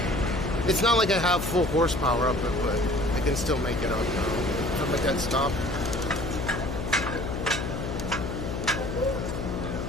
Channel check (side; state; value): left; noise; hum, 4 dB below the sound